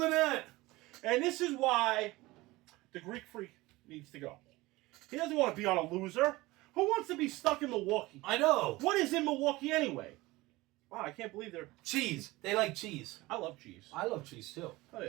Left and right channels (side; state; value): left; quieter; 20.3 dB